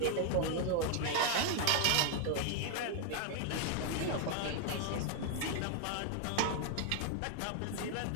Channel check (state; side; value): different; both; correlation 0.00